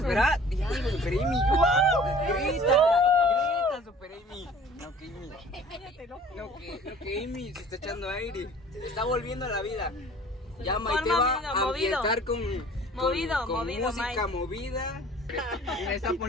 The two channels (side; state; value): both; normal; correlation 0.49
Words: ¿verdad? Ya, Super Amy. ¡Wow! ¡Grita! Super Amy. No, que Amy se está echando aire. Se está volviendo a la vida. Ya Maite va a ambientar con movido, música Mike. movida. Y me está